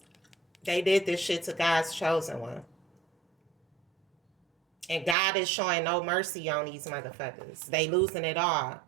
they did this shit to God's chosen one, and God is showing no mercy on these motherfuckers. They losing it all:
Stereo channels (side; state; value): left; drops out; at 5.2 s